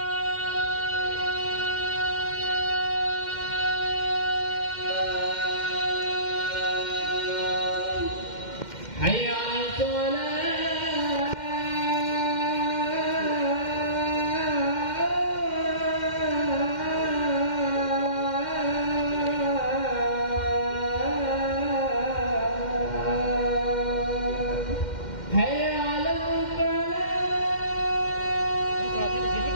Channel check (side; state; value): right; late; 2.1 ms